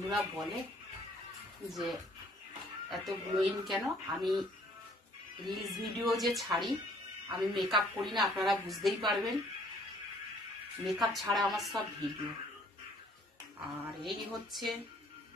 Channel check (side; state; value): both; normal; correlation 0.60